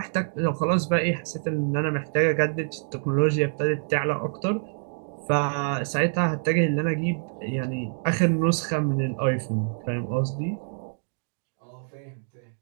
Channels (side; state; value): left; silent; digital silence